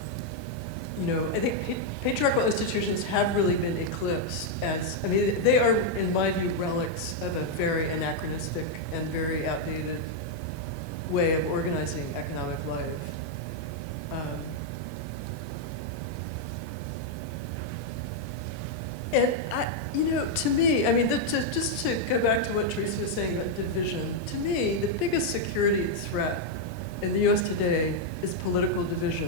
I think patriarchal institutions have really been eclipsed they are, in my view, relics of a very anachronistic and very outdated way of organizing economic life. And to me, just to go back to what Teresa was saying about division, to me, the biggest security threat in the U.S. today is political division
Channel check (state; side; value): late; right; 4.2 ms